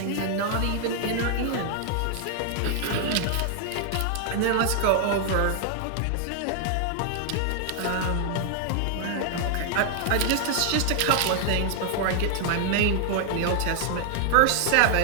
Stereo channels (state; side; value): different; both; correlation 0.00